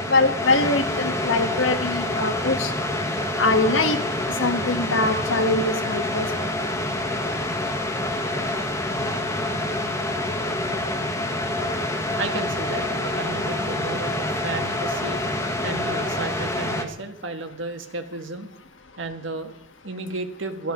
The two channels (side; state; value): both; normal; correlation 0.12